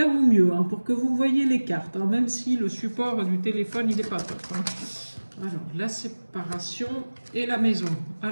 au mieux pour que vous voyez les cartes, même si le support du téléphone, il n'est pas top. Alors, la séparation et la maison.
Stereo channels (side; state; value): both; inverted; correlation -1.00